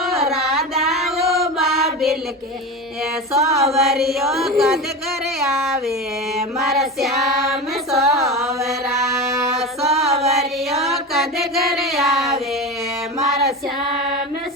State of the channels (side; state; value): both; normal; correlation 0.25